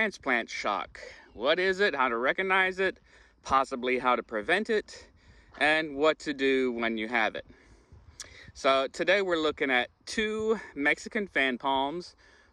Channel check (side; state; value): both; identical; correlation 1.00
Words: shock. What is it, how to recognize it, possibly how to prevent it, and what to do when you have it. So today we're looking at two Mexican fan palms,